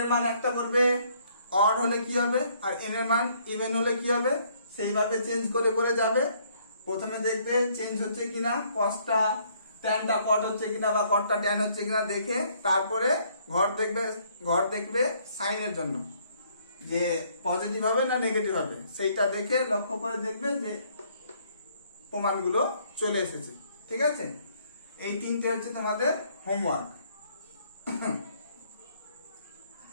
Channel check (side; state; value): both; inverted; correlation -0.66